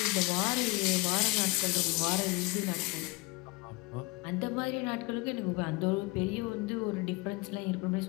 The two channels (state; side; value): quieter; right; 23.5 dB